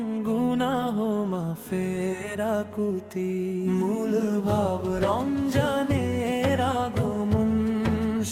গুনাহ মাফের আকুতি। মূল ভাব রমজানের আগমন,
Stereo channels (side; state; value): both; identical; correlation 1.00